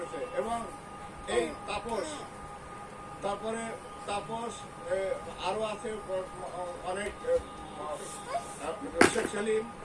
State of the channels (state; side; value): identical; both; correlation 1.00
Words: এবং এই তারপরে তাপস আরও আছে অনেক শেখ সেলিম